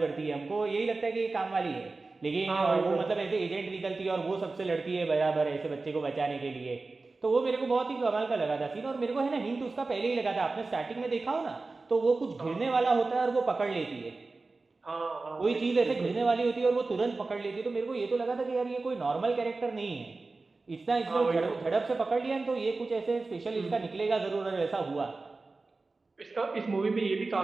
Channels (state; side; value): quieter; left; 3.6 dB